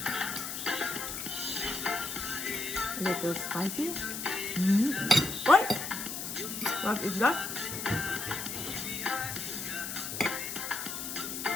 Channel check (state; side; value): noise; left; hiss, 5 dB below the sound